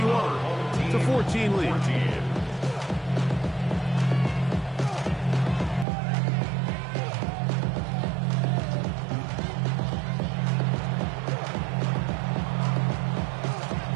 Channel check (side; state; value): left; drops out; at 5.9 s